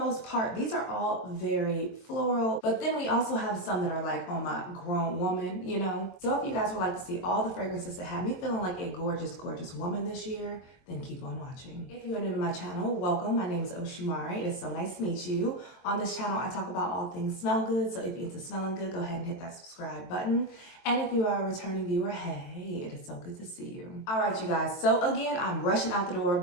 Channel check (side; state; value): right; late; 23 ms